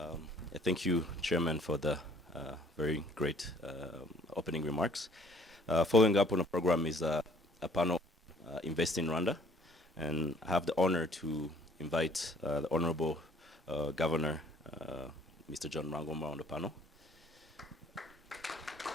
Thank you, Chairman, for the very great opening remarks. Following up on the program is a panel, Invest in Rwanda, and I have the honor to invite the Honorable Governor, Mr. John Rangomba, on the panel.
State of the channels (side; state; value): both; normal; correlation 0.57